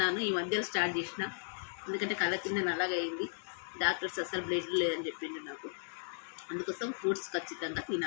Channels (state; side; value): silent; right; digital silence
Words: ఈ మధ్యలో స్టార్ట్ చేసిన, ఎందుకంటే కళ్ళ కింద నల్లగా అయింది. డాక్టర్స్ అసలు బ్లడ్ లేదని చెప్పిండు నాకు. అందుకోసం ఫ్రూట్స్ ఖచ్చితంగా